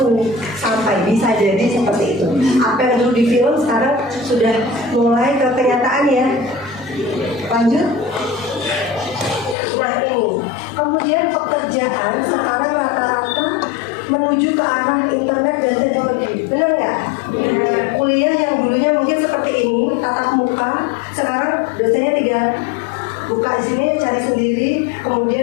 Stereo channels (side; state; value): right; drops out; at 9.6 s